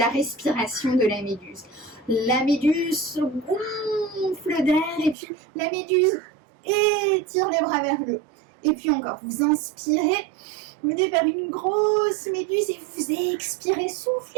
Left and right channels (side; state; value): left; drops out; at 5.2 s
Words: respiration de la méduse. La méduse se gonfle d'air et puis la méduse étire les bras vers le haut. Et puis encore, vous inspirez, vous venez vers une grosse méduse et vous expirez,